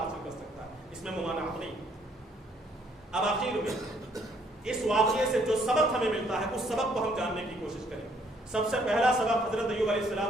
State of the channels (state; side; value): normal; both; correlation 0.66